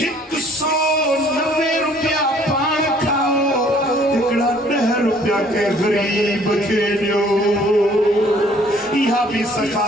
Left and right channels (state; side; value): normal; both; correlation 0.58